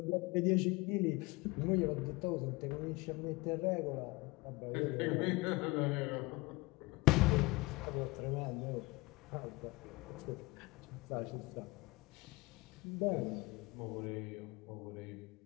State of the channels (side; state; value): right; quieter; 22.8 dB